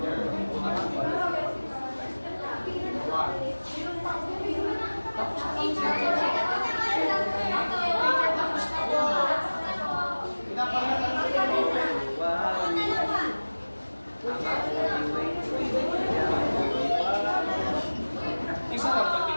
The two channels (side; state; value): both; inverted; correlation -1.00